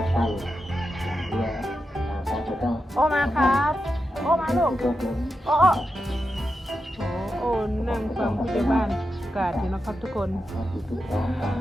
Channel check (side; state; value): both; normal; correlation 0.89